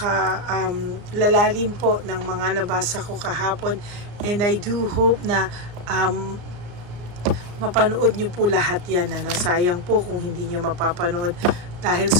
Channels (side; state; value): left; late; 34 ms